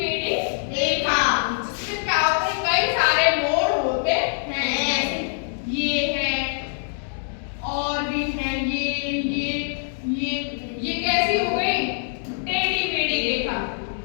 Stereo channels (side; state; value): right; silent; digital silence